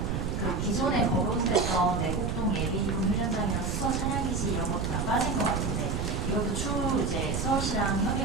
기존에 거론됐던 내곡동 예비군 훈련장이나 수서 차량기지 이런 것도 다 빠진 것 같은데 이것도 추후 이제 서울시랑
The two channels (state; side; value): noise; right; rumble, 1 dB below the sound